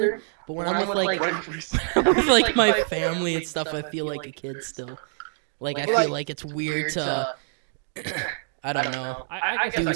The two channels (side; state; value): left; silent; digital silence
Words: But when I'm with like my family and stuff, I feel like a kid still. Like I feel like it's weird to. I don't know. I guess I can.